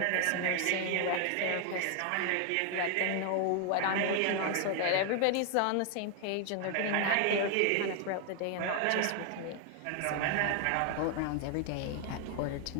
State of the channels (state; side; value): different; both; correlation 0.00